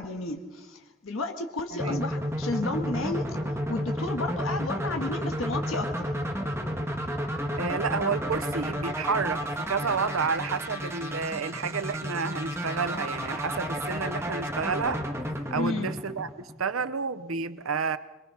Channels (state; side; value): normal; both; correlation 0.30